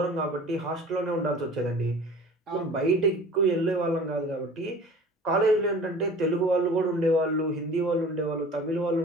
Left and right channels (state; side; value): normal; both; correlation 0.43